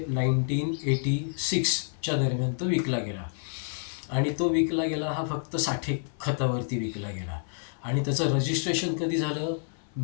दरम्यान तो विकला गेला. आणि तो विकला गेला हा फक्त साठे खतावरती विकला गेला. आणि त्याचं रजिस्ट्रेशन कधी झालं?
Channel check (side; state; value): right; silent; 57 dB below the other